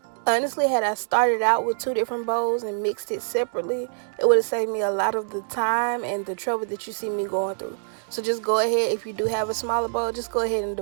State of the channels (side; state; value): left; silent; digital silence